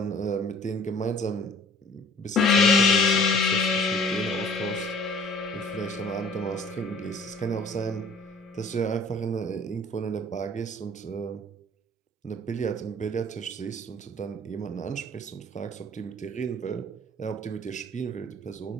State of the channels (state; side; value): normal; both; correlation 0.51